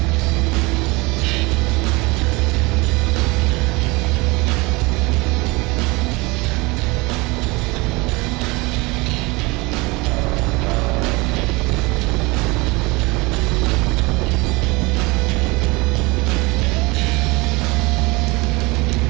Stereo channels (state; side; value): quieter; left; 24.7 dB